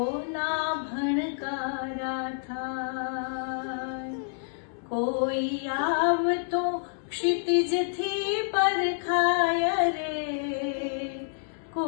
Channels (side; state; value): right; silent; digital silence